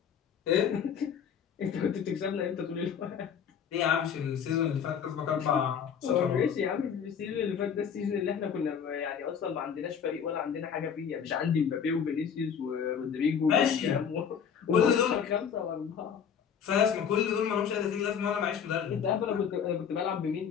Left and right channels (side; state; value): right; quieter; 7.5 dB